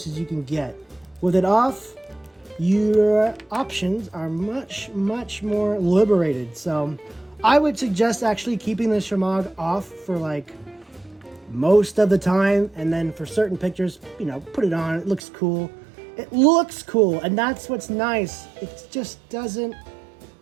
as you can get. With it off, your options are much, much more liberated. So I would suggest actually keeping the shamag off for like most of the time, and then for certain pictures, you know, put it on. It looks cool. It looks cool, and that's what's nice. It just doesn't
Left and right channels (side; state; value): left; drops out; at 15.2 s